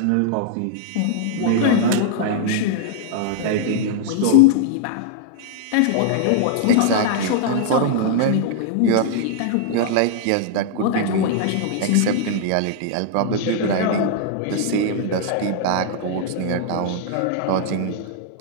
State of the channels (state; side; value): different; both; correlation -0.01